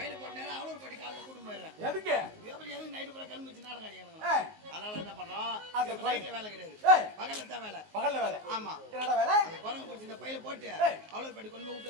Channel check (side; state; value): left; late; 19 ms